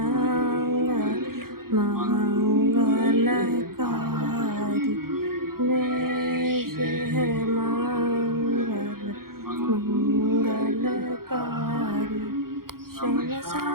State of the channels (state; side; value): late; left; 0.92 ms